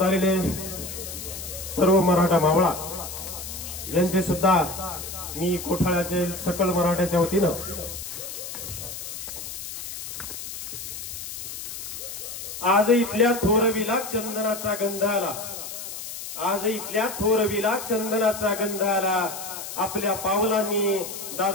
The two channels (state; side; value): noise; left; hiss, 9 dB below the sound